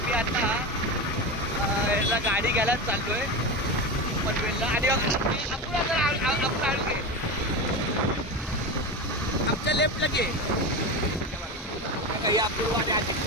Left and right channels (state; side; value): normal; both; correlation 0.21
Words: मी आता याला गाडी घ्यायला चाललोय पनवेलला. आणि आपण आणू घे आमच्या लेफ्टला घे अपूर्व आणि